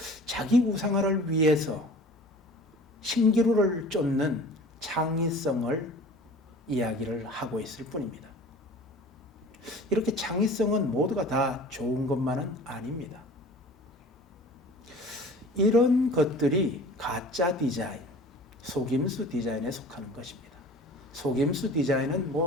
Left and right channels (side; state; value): both; normal; correlation 0.43